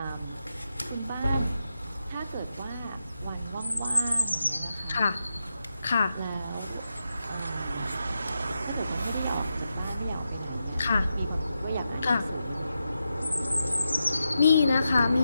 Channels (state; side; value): inverted; both; correlation -0.88